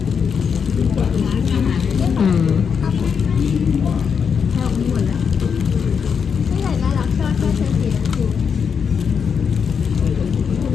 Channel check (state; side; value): quieter; right; 6.6 dB